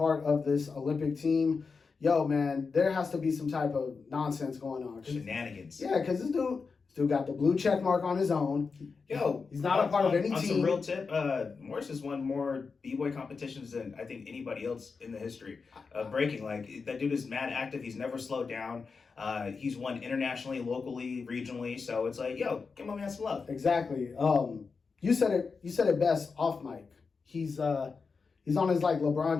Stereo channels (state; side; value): quieter; right; 4.9 dB